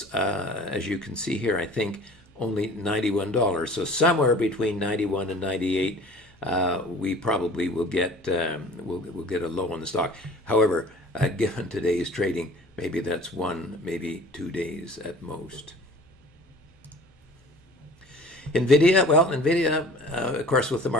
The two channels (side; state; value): both; normal; correlation 0.46